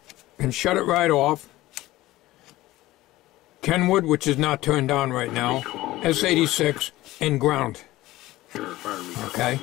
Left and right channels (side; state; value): right; quieter; 17.2 dB